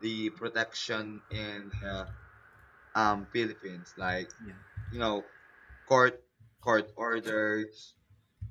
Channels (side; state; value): both; identical; correlation 1.00